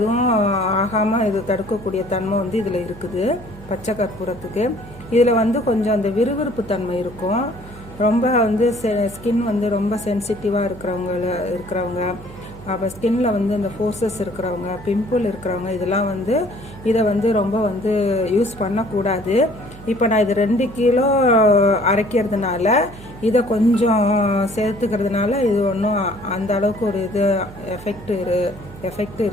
ஆகாமல் இது தடுக்கக்கூடிய தன்மை வந்து இதில் இருக்குது பச்சை கற்பூரத்துக்கு. இதில் வந்து கொஞ்சம் அந்த விறுவிறுப்பு தன்மை இருக்கும். ரொம்ப வந்து ஸ்கின் வந்து ரொம்ப சென்சிட்டிவாக இருக்கிறவங்க, அப்போ ஸ்கின்ல வந்து இந்த ஃபோர்ஸஸ் இருக்கிறவங்க, பிம்பிள் இருக்கிறவங்க, இதெல்லாம் வந்து இதை வந்து ரொம்ப வந்து யூஸ் பண்ணக்கூடாது. இப்போ நான் இது 2 கிலோ அரைக்கிறதுனால இதை கொஞ்சம் சேர்த்துக்கிறதுனால இது ஒன்றும் அந்த அளவுக்கு ஒரு எஃபெக்ட்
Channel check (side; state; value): right; noise; hum, 17 dB below the sound